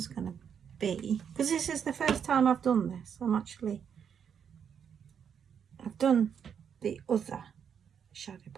going to be, because this is the first time I've done this. I've done the other shadow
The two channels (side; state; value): left; quieter; 7.7 dB